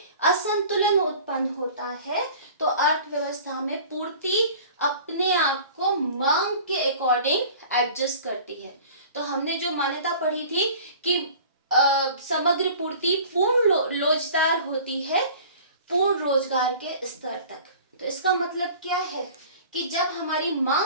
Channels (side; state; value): both; inverted; correlation -0.44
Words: असंतुलन उत्पन्न होता है तो अर्थव्यवस्था में पूर्ति अपने आप को मांग के अकॉर्डिंग एडजस्ट करती है। तो हमने जो मान्यता पढ़ी थी कि समग्र पूर्ति पूर्ण लोचदार होती है पूर्ण रोजगार के स्तर तक। तो इसका मतलब क्या है कि जब हमारी